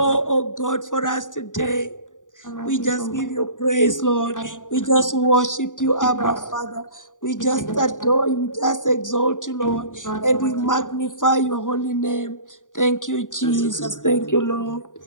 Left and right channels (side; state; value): right; late; 0.87 ms